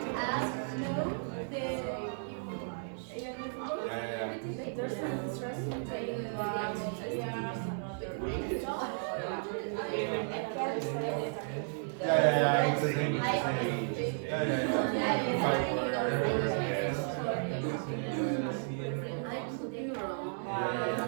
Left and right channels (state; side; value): silent; left; digital silence